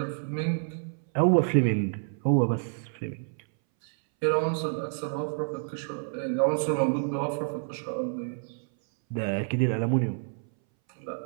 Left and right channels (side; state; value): left; silent; 59 dB below the other